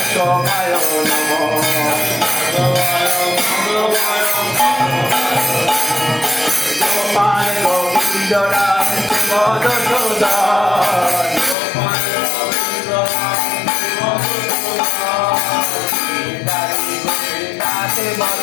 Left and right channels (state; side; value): drops out; right; at 11.6 s